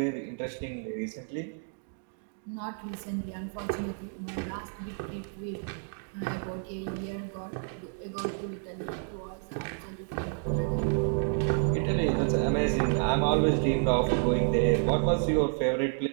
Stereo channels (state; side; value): silent; left; 58 dB below the other